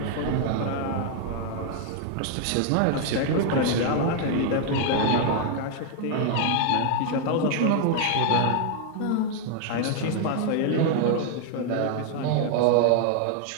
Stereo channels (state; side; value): different; both; correlation 0.00